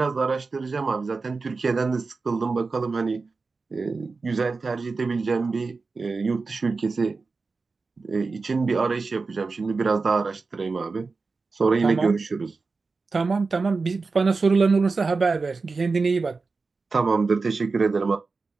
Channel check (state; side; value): quieter; left; 4.2 dB